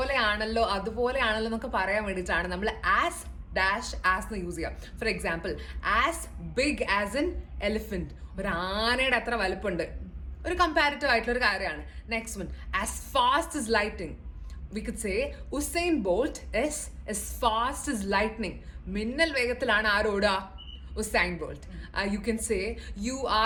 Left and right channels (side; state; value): both; identical; correlation 1.00